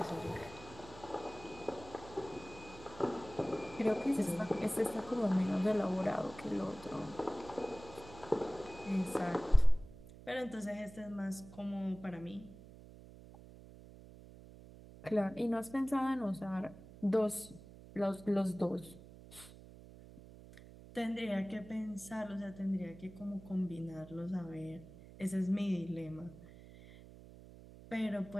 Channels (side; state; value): right; noise; hum, 17 dB below the sound